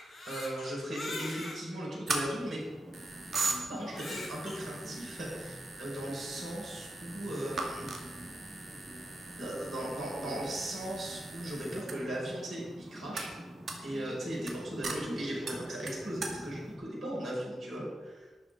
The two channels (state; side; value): normal; both; correlation 0.86